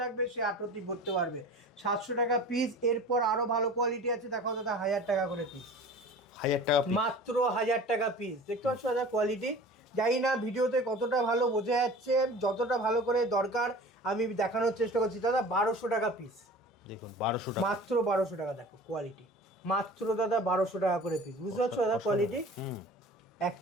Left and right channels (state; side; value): normal; both; correlation 0.40